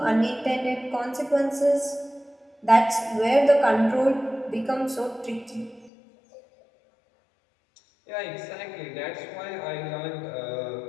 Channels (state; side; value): drops out; right; at 5.9 s